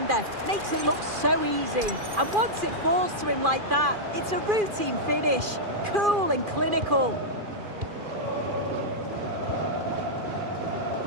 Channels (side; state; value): left; late; 2.4 ms